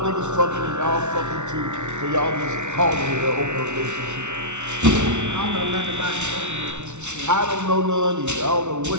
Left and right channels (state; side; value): late; left; 0.83 ms